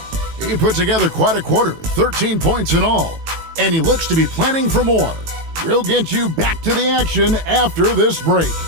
He put together quite a quarter, 13 points in all, and he looks to be planning for more. We'll get you back to the action after this break.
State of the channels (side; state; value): left; late; 18 ms